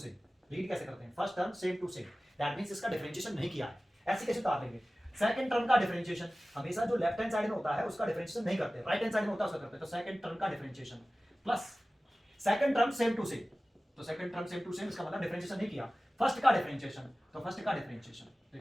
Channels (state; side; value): normal; both; correlation 0.97